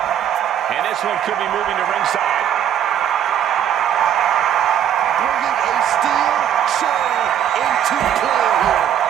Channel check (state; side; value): quieter; left; 9.9 dB